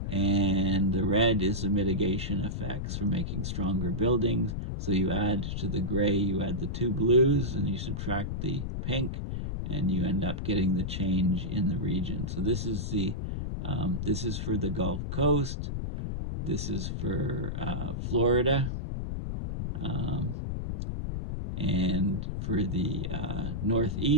And the red is the mitigation effects for making stronger buildings. So you add to the gray, you add the two blues, and you subtract the pink, and you end up getting the change in the region. So this is for the Gulf Coast. This is for Florida, and for the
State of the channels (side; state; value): left; noise; rumble, 3 dB below the sound